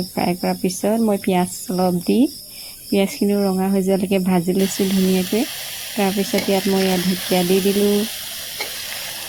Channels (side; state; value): left; noise; rumble, 26 dB below the sound